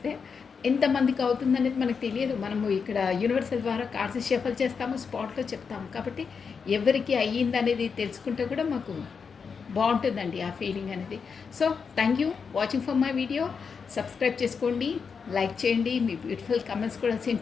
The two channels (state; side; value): quieter; right; 5.8 dB